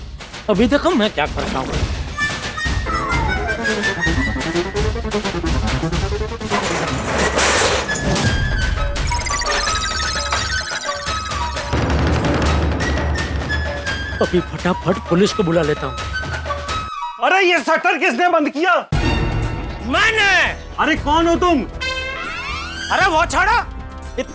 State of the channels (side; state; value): both; identical; correlation 1.00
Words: अभी देखो मैं क्या करता हूँ। अभी फटाफट पुलिस को बुला लेता हूँ। अरे ये शटर किसने बंद किया? मैंने। अरे कौन हो तुम? अरे वो छोड़ो,